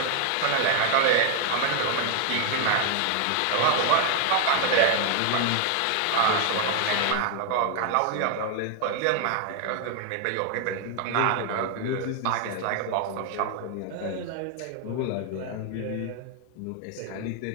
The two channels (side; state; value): both; different; correlation 0.00